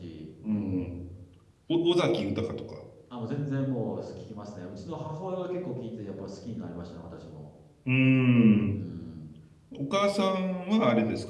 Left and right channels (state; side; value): identical; both; correlation 1.00